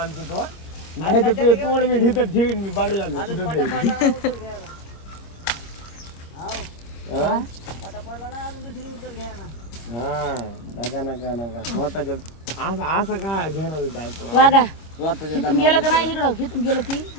तो नाही तर तुझं तोंड मी ढिथं ठेवीन मी बघला ना कुठं तरी. हा नका स्वतःच्या असं काय घेणार आहे वागा स्वतःच्या इथून गेलं का नाही इकडं इथून गेलं की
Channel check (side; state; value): right; late; 26 ms